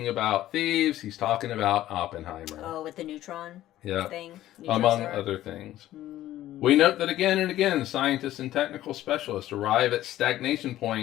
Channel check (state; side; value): quieter; right; 14.0 dB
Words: about thieves, he's talking about Oppenheimer. Oh, with the neutron thing? Among other things. We note that again and again, scientists and technical specialists arrive at stagnation